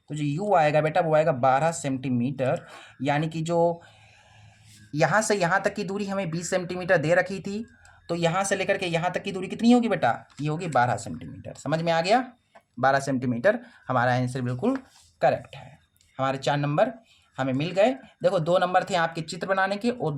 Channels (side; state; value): both; identical; correlation 1.00